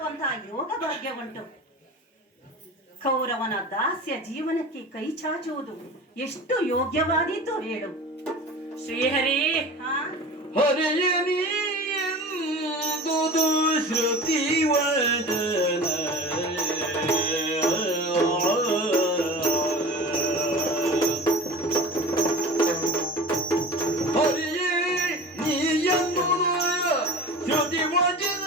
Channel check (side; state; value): both; normal; correlation 0.36